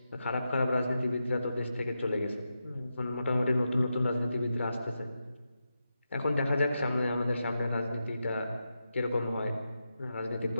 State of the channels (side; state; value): both; inverted; correlation -0.88